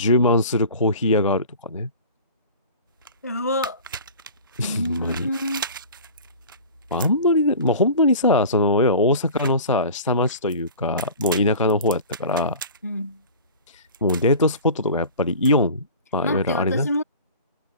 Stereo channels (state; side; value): inverted; both; correlation -0.39